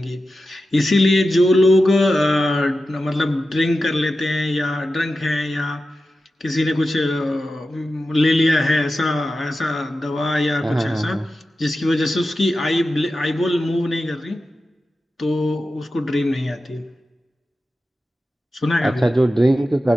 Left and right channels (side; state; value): both; normal; correlation 0.92